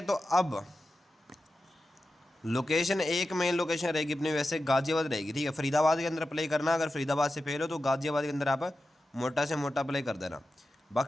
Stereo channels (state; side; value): normal; both; correlation 0.92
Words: तो अब लोकेशन एक मेन लोकेशन रहेगी अपनी वैसे गाज़ियाबाद रहेगी, ठीक है। फरीदाबाद के अंदर प्ले करना, अगर फरीदाबाद से फेल हो तो गाज़ियाबाद के अंदर आप मोटा से मोटा प्ले कर देना।